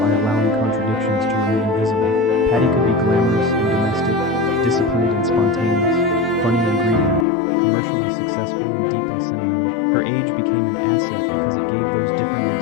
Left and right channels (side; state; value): right; drops out; at 7.2 s